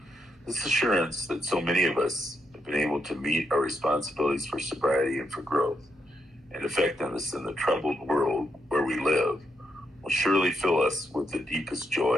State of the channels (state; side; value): normal; both; correlation 0.80